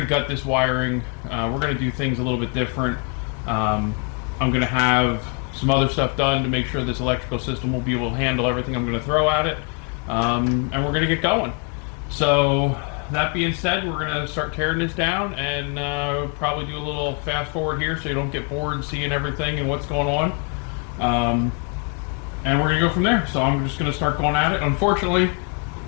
gut this wiring. We're going to do things a little bit different. I'm going to have some other stuff done to make sure this electrical system will be able to handle everything I'm going to throw at it. And we're going to get going. So that being said, we're going to start tearing this down and probably do a little fast forward here so you don't get bored seeing everything and what's going on. And we're going to go from there. So I'm just going to start going at it. Unfortunately,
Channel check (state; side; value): quieter; right; 36.1 dB